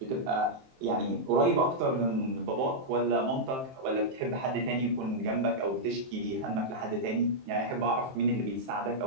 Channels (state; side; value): late; left; 23 ms